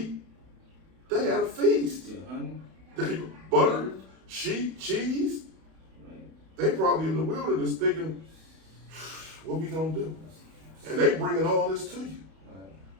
They had a feast. Yeah, honey. There you go. Butter, sheep, cheese. Right. They probably in the wilderness thinking, what we gonna do? And they bringing all this to you. Right.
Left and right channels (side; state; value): left; late; 31 ms